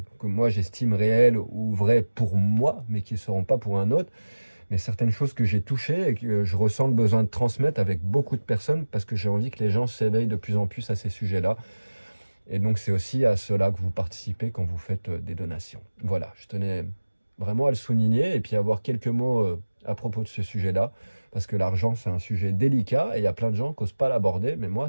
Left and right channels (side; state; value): both; inverted; correlation -1.00